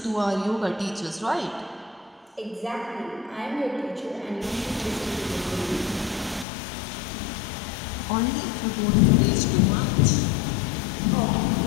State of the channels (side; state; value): right; drops out; at 6.5 s